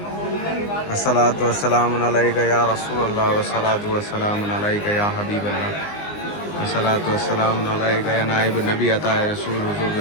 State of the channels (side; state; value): right; late; 19 ms